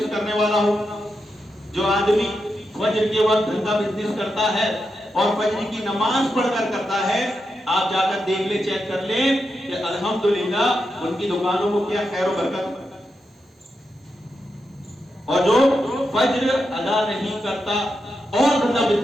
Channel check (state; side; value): normal; both; correlation 0.86